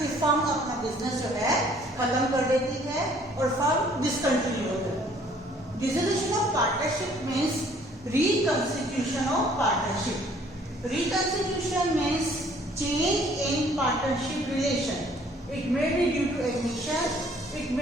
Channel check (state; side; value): normal; both; correlation 0.59